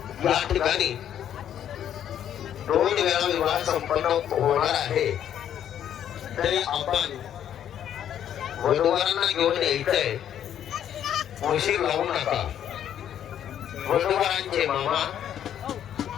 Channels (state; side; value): quieter; right; 10.0 dB